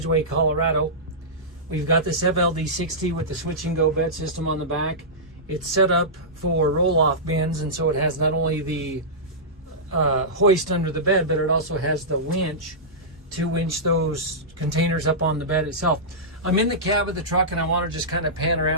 Colorado. We've got this FL60 with the switch and go bed system on the back. It's set up for roll-off bins, and so it has not only the hoist under the bed, but it also has the winch to winch those containers up on the bed itself. I'm in the cab of the truck, and I want to just kind of pan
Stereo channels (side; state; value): both; normal; correlation -0.15